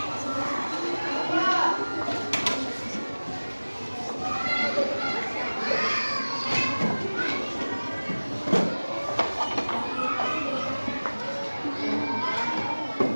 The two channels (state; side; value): inverted; both; correlation -1.00